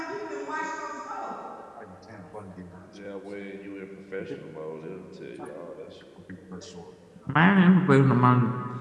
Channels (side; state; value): both; identical; correlation 1.00